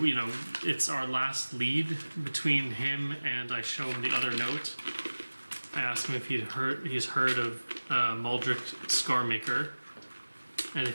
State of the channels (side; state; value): both; inverted; correlation -1.00